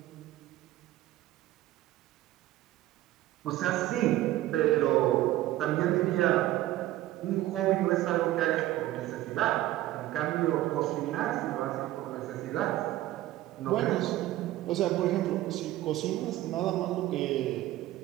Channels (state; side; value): quieter; left; 15.3 dB